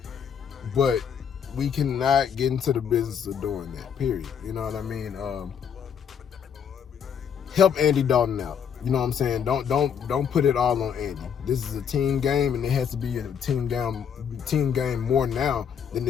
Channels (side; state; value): right; quieter; 7.6 dB